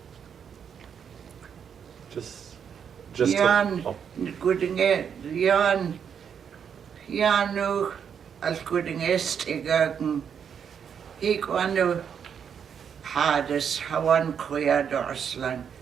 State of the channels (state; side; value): quieter; left; 7.6 dB